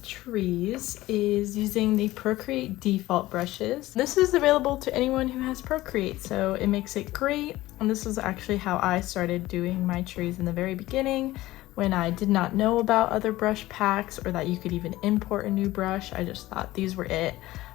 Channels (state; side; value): quieter; right; 17.1 dB